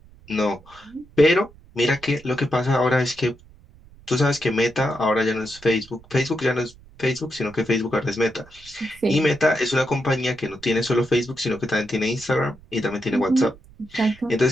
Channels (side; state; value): right; noise; rumble, 24 dB below the sound